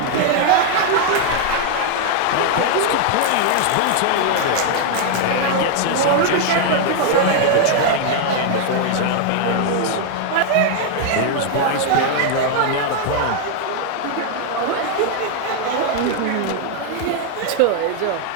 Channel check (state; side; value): different; both; correlation 0.00